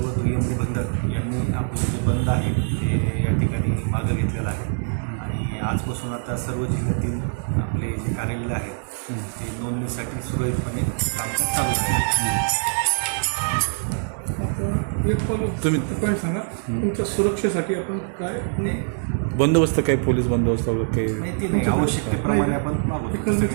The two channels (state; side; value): silent; left; 63 dB below the other